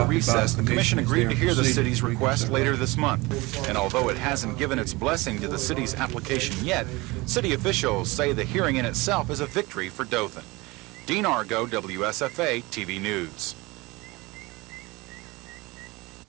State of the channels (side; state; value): left; quieter; 22.9 dB